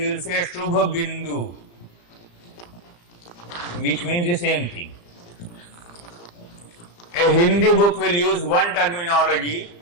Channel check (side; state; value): right; late; 35 ms